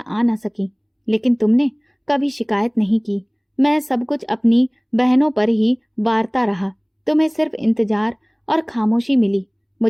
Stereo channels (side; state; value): both; identical; correlation 1.00